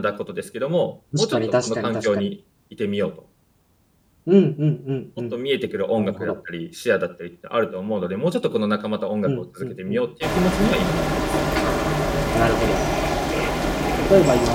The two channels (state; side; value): identical; both; correlation 1.00